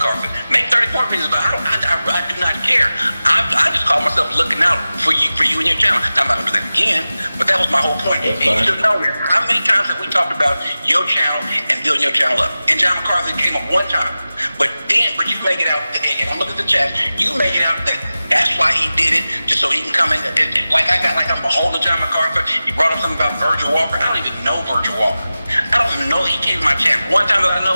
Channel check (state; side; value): inverted; both; correlation -0.96